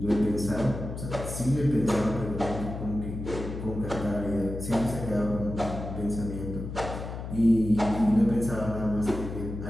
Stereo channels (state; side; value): noise; left; hum, 7 dB below the sound